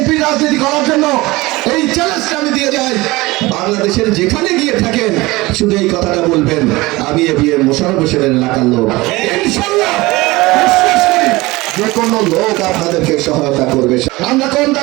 রাজনীতি করার জন্য এই চ্যালেঞ্জটা আমি দিয়ে যাই। বাংলাদেশের যেখানে গিয়ে থাকেন শুধু এই কথাটা বলবেন, আমি এবিএম মোশাররফ হোসেনের এলাকার লোক। ইনশাআল্লাহ বিশ্বাস করি যে কোনো লোক আপনাদেরকে সহায়তা করবে। আমরা কম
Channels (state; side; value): quieter; left; 21.0 dB